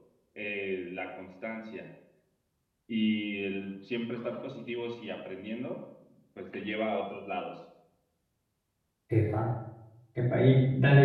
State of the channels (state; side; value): identical; both; correlation 1.00